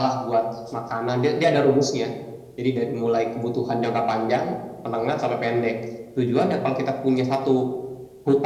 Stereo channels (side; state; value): both; identical; correlation 1.00